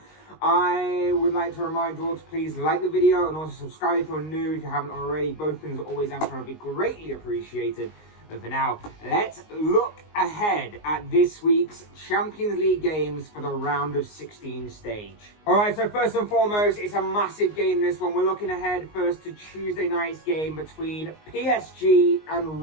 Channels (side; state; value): right; late; 19 ms